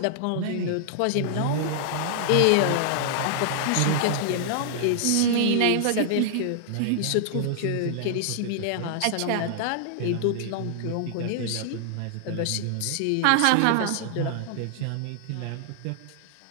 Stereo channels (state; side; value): different; both; correlation -0.01